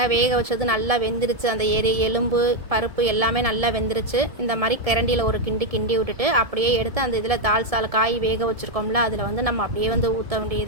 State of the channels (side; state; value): left; late; 1.7 ms